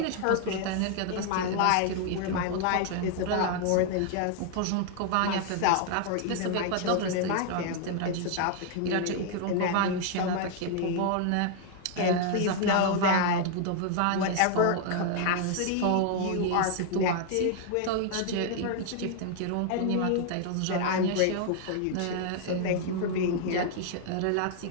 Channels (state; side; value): different; both; correlation 0.00